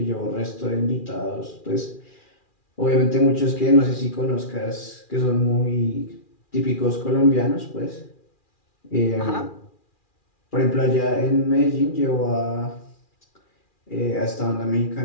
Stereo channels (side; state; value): right; late; 2.4 ms